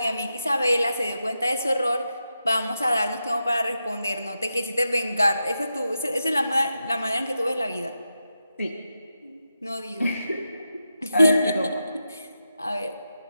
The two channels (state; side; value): inverted; both; correlation -0.88